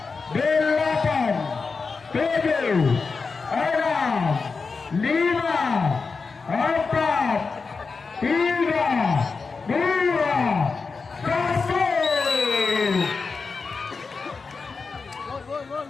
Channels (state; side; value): quieter; right; 4.6 dB